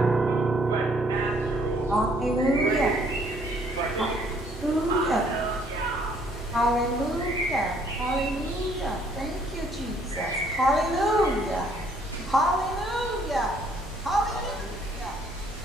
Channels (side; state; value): both; normal; correlation 0.64